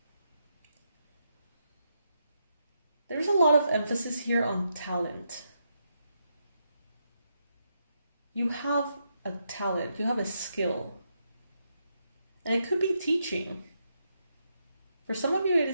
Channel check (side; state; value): both; inverted; correlation -0.81